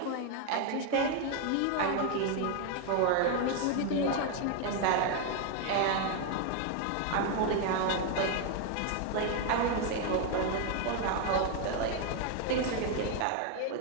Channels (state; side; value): different; both; correlation 0.01